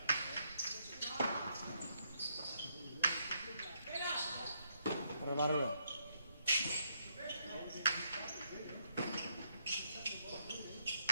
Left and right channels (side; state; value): both; inverted; correlation -0.75